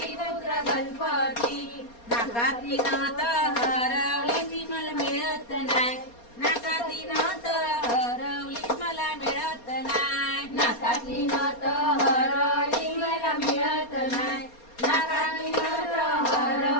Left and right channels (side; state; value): right; late; 4.3 ms